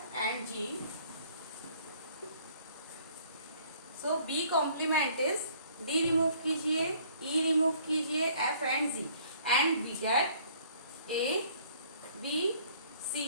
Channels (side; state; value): both; inverted; correlation -0.57